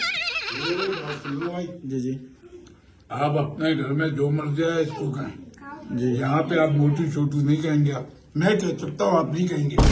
जी जी आप अपने घर में जो मर्जी है इसको कहें, जी, यहाँ पे आप मोटू छोटू नहीं कहेंगे। आप मैं कह सकता हूँ, आप नहीं कहेंगे।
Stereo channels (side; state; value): both; identical; correlation 1.00